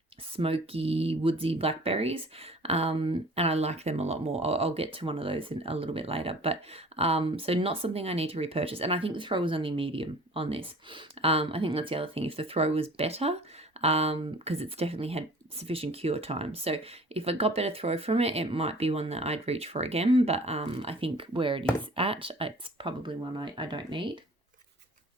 smoky, woodsy blackberries, and I like them a lot more. I'll get to one of those in a little bit later, but so not something I need to repurchase. And I think the throw was only medium on this. I think that's the other thing. If the throw was better, because it's definitely had sufficient cure time. So if I got better throw from it, it might be one that I'd reach for again. But I think where it is at, it's probably one I don't need.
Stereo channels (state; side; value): normal; both; correlation 0.47